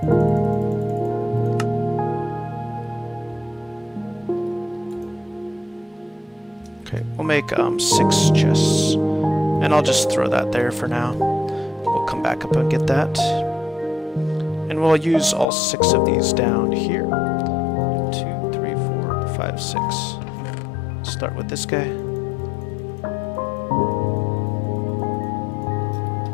Okay, we'll make 6 chests. And I'll just throw that there for now. We'll come back up and get that. And we'll use all 6 of these down here. 2, 3, 4, 5, 6. Start with this guy.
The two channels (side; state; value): right; drops out; at 15.5 s